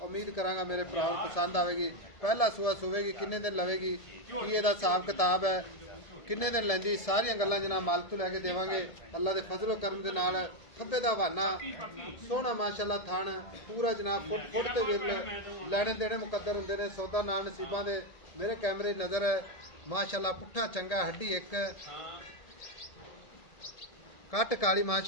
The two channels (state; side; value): late; right; 1.7 ms